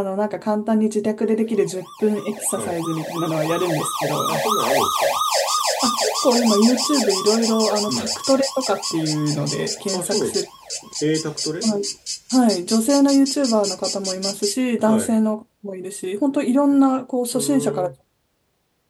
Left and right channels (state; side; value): identical; both; correlation 1.00